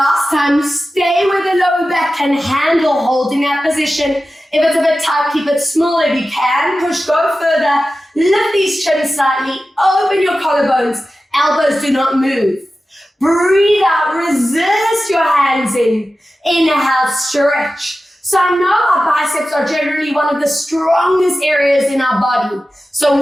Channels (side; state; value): both; normal; correlation 0.94